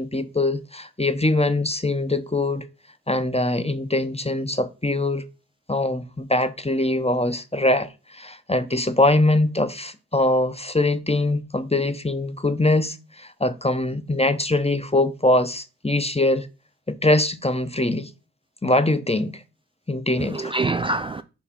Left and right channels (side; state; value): both; normal; correlation 0.51